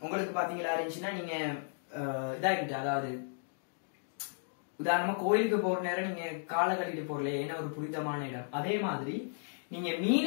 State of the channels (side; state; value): right; silent; digital silence